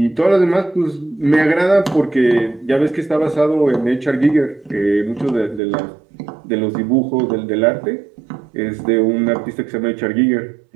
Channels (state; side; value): drops out; left; at 5.6 s